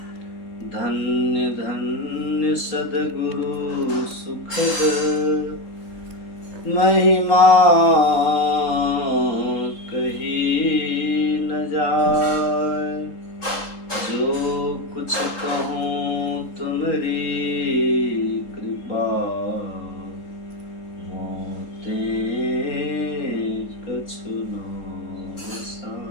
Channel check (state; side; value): late; right; 3.7 ms